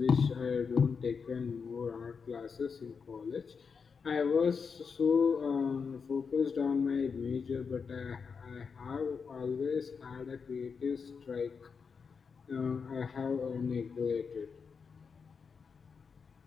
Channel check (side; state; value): right; quieter; 5.7 dB